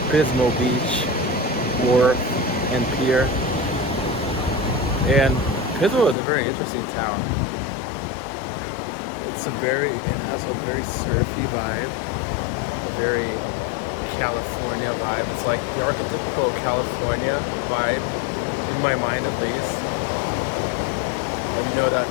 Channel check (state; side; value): drops out; right; at 6.2 s